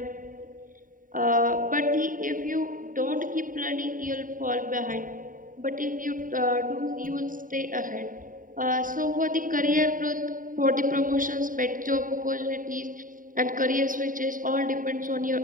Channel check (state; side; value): late; left; 0.39 ms